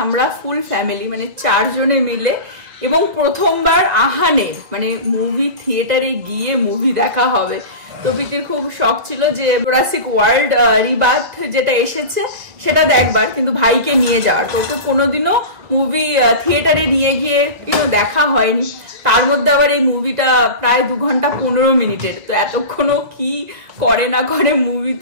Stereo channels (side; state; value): left; late; 2.3 ms